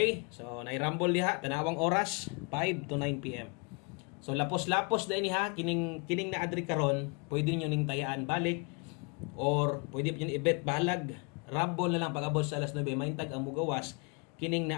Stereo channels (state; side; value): quieter; right; 34.0 dB